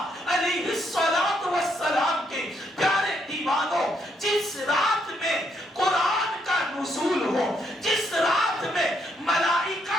علیہ الصلوۃ والسلام کے پیارے دیوانوں، جس رات میں قرآن کا نزول ہو، جس رات میں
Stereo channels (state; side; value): normal; both; correlation 0.74